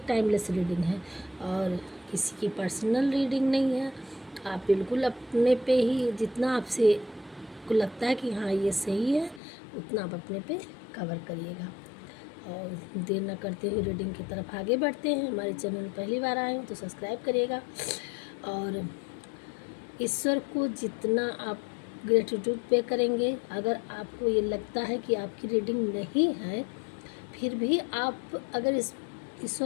टाइमलेस रीडिंग है और किसी की पर्सनल रीडिंग नहीं है। आप बिल्कुल अपने पे ही जितना आपसे को लगता है कि हाँ ये सही है उतना आप अपने पे कवर करिएगा। और देर न करते हुए रीडिंग की तरफ आगे बढ़ते हैं। हमारे चैनल में पहली बार आए हैं तो सब्सक्राइब करिएगा और ईश्वर को जितना आप ग्रेटिट्यूड पे करेंगे, अगर आपको ये लगता है कि आपकी रीडिंग नहीं है फिर भी आप अगर इस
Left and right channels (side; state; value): right; drops out; at 9.4 s